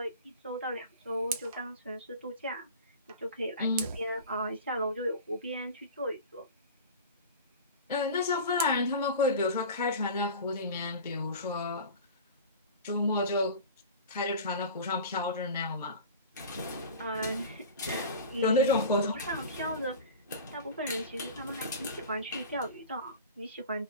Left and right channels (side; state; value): both; inverted; correlation -0.35